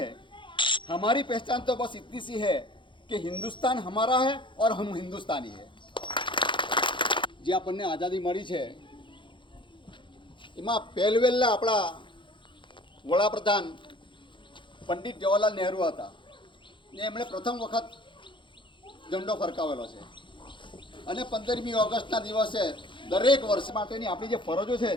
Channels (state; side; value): late; right; 0.24 ms